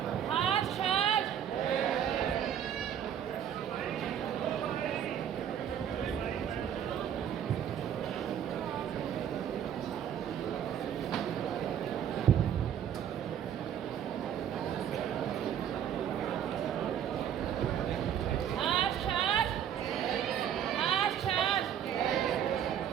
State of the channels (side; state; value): left; quieter; 9.3 dB